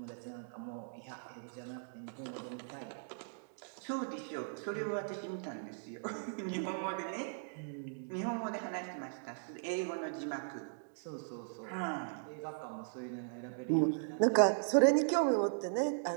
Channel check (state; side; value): silent; left; digital silence